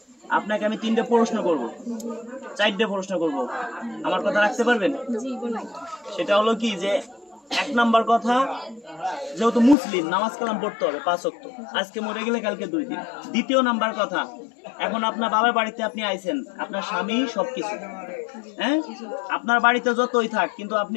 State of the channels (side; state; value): right; drops out; at 9.8 s